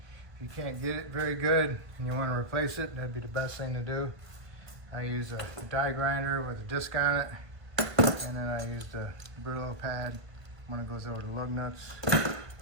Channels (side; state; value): left; late; 1.5 ms